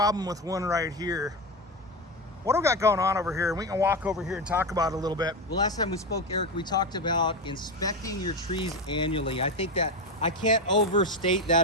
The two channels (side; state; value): both; normal; correlation 0.16